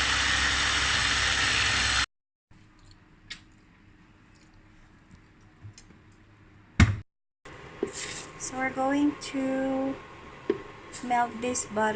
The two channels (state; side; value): identical; both; correlation 1.00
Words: So we're going to melt this